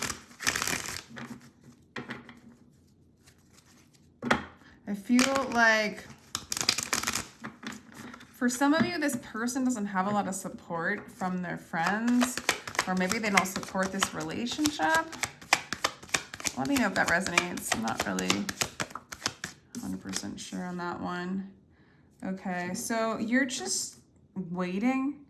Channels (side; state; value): both; identical; correlation 1.00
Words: I feel like for some of you, this person doesn't have a lot of support from their friends, or maybe they don't support this relationship. Let me know if that resonates. I'm not really 100% sure on that one. Okay, so you're just waiting.